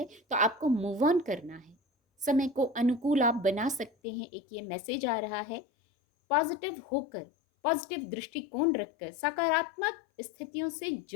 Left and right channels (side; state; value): right; drops out; at 3.9 s